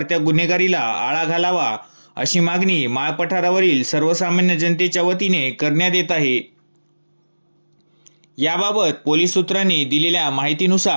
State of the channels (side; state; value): both; inverted; correlation -1.00